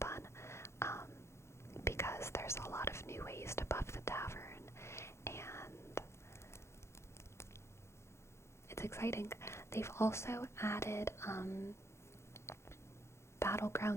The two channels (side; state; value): right; late; 0.13 ms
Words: because there's a lot of new ways to buff the tavern, and it's exciting. They've also added